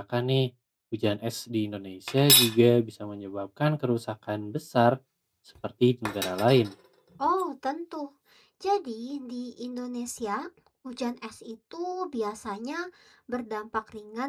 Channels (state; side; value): identical; both; correlation 1.00